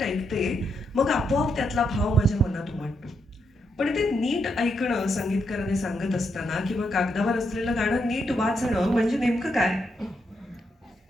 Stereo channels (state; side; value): normal; both; correlation 0.80